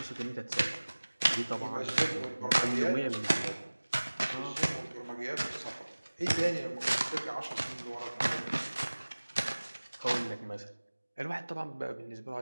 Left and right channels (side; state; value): both; inverted; correlation -1.00